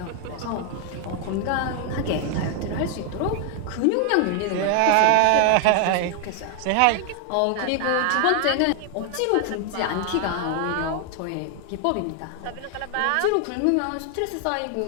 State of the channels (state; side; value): different; both; correlation 0.00